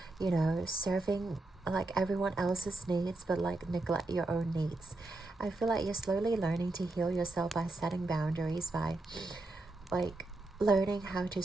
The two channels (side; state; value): left; quieter; 3.0 dB